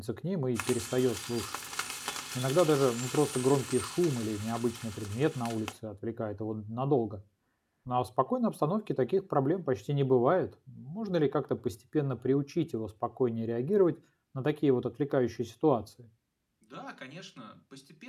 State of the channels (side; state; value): both; identical; correlation 1.00